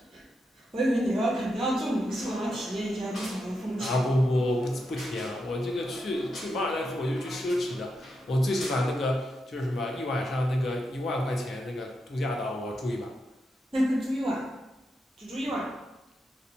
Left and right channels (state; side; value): normal; both; correlation 0.85